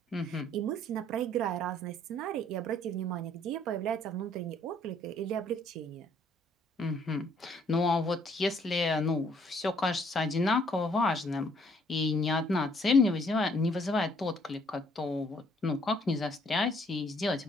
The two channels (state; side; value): normal; both; correlation 0.64